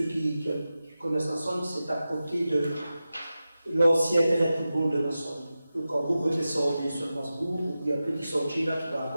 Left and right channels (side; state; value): both; inverted; correlation -0.93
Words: qui connaissent la Somme, c'est à côté de l'ancien terrain de football de la Somme. Donc quand vous redescendez sur Masbourg, il y a un petit sentier là qui va